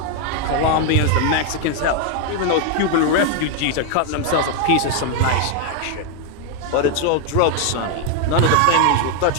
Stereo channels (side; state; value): both; different; correlation 0.00